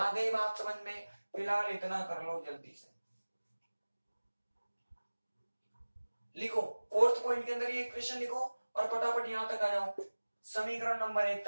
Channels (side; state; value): both; inverted; correlation -1.00